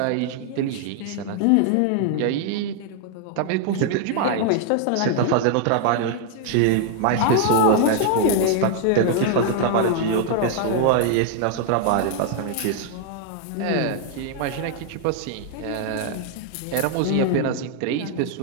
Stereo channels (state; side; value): different; both; correlation 0.00